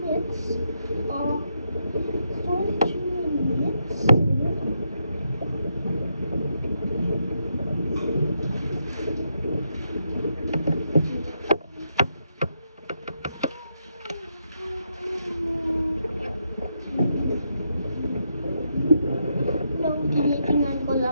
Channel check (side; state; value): both; inverted; correlation -0.81